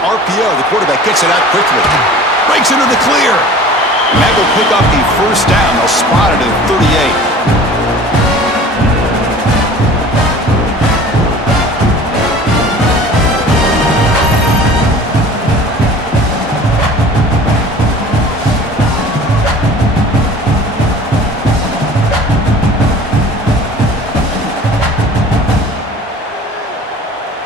The quarterback gets it out quickly. Breaks into the clear. And that will pick up the 1st down. They'll spot it at 38.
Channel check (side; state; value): both; normal; correlation 0.43